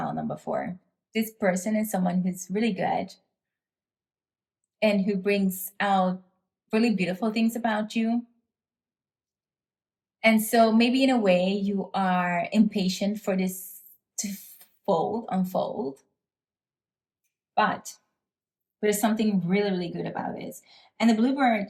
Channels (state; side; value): identical; both; correlation 1.00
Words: number 4. This person is someone who's really good and who brings out really beautiful things about you. And so maybe in a way you are impatient for this to unfold. But there's something really, really good about this. And the Bluebird